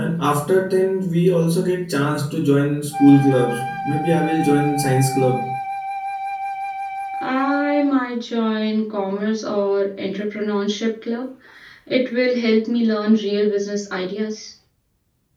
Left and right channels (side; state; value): both; identical; correlation 1.00